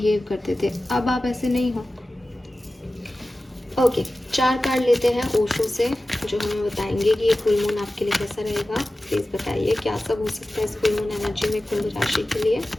करते थे। अब आप ऐसे नहीं हो। ओके, 4 कार्ड लेते हैं ओशो से, जो हमें बताएंगे कि ये फुल मून आपके लिए कैसा रहेगा। प्लीज़ बताइए क्या सब हो सकता है इस फुल मून एनर्जी में कुंभ राशि के लिए।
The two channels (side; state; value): both; normal; correlation 0.95